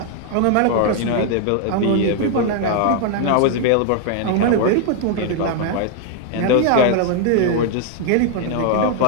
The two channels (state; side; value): different; both; correlation 0.00